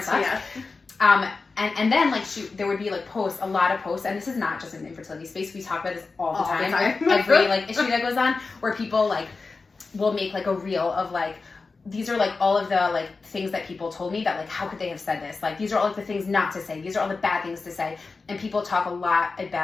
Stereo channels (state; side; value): quieter; right; 4.1 dB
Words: sucks. Yeah. And then, like, there would be, like, a lot of posts, and this is not just an infertility space, we talk about this all the time. Every, like, issue that goes on, where people, like, will make, like, a reel of, like, these are, like, all of the, like, things that people told me that, like, how could they have said this? Like, these are all, like, the things not to say. These are all the bad things to say. And people talk a lot